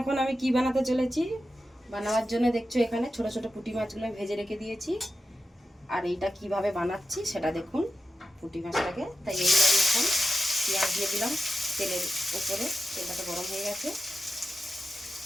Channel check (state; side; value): normal; both; correlation 0.91